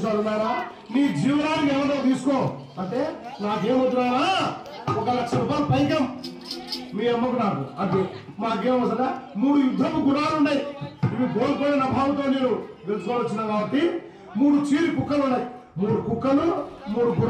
నారా నీ జీవనానికి ఏమన్నా తీసుకో అంటే నాకేమవుతున్నాయా, 1 లక్ష రూపాయలు పైకం మీ అమ్మకు నాకు అంటే మాకేమవుతుందా. 3 యుద్ధపు గుణాలు ఉన్నాయి. ఇవి కోల్పోయిన అభావంతో నేను తెలుసుకోవచ్చున్నా. కాబట్టి 3 చీరి కుక్కలు ఉన్నాయి. 3 కుక్కలు, 3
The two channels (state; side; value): identical; both; correlation 1.00